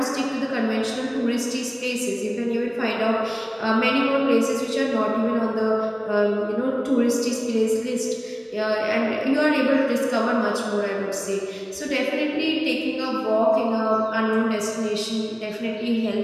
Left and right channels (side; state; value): both; identical; correlation 1.00